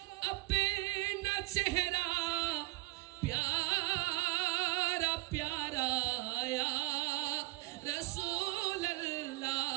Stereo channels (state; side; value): quieter; left; 20.3 dB